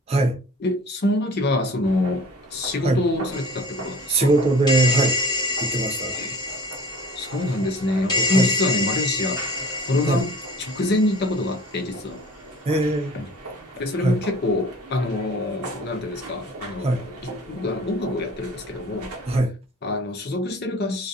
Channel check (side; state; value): both; normal; correlation 0.45